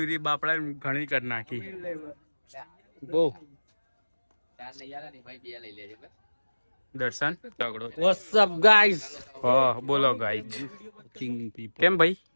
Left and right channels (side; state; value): both; inverted; correlation -1.00